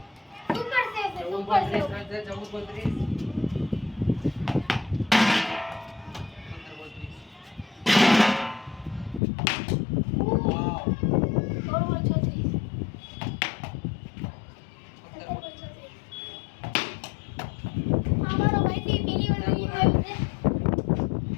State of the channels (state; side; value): drops out; right; at 9.2 s